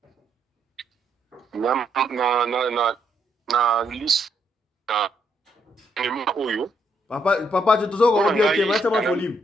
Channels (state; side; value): normal; both; correlation 0.74